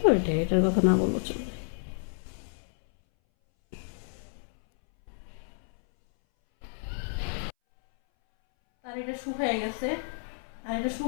তো এটার কথা না বলবো চলবে। আর এটা শুকায় গেছে, আর এটা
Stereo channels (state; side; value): silent; right; 58 dB below the other